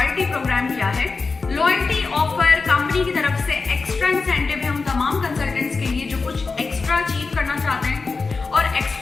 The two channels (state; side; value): quieter; right; 4.3 dB